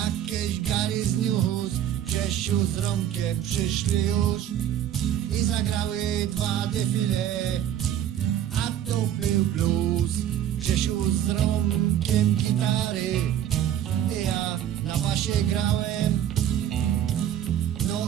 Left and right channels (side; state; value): left; quieter; 10.8 dB